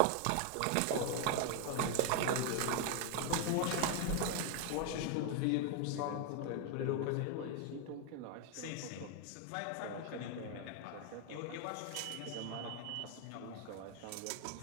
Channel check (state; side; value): different; both; correlation 0.01